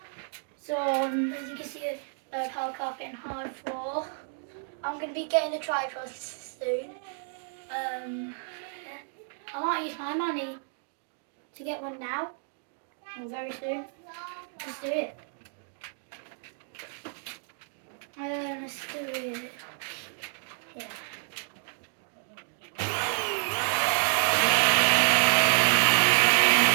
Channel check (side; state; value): left; silent; 58 dB below the other